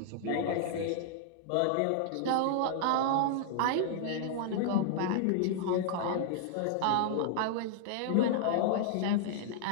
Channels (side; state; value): both; different; correlation -0.01